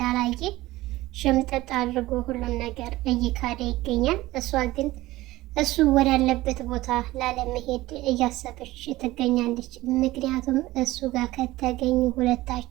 ሽምጥጥ አድርጎ ሁሉም ነገር እየካደ ይገኛል። እሷ ግን እሱ ወዳለበት ቦታ ላለመሄድ እያሰበች ትገኛለች። ምክንያቱም እሱ ጋር ከተገኙ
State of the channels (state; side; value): quieter; left; 17.8 dB